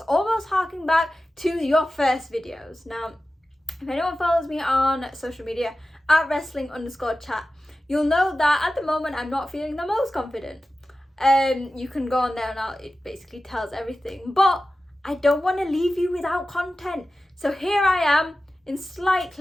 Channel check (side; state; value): both; normal; correlation 0.94